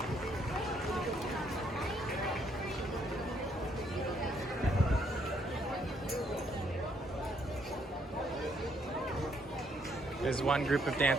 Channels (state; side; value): normal; both; correlation 0.70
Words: As one group of